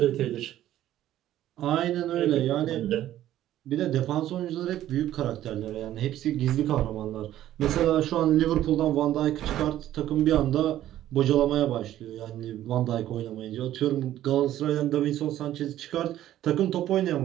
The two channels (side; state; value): left; quieter; 12.9 dB